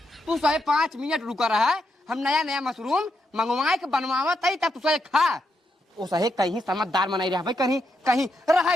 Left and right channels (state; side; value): normal; both; correlation 0.81